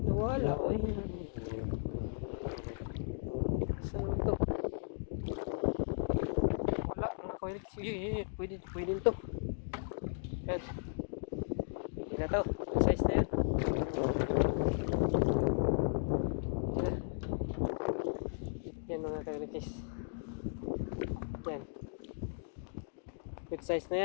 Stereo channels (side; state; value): right; silent; digital silence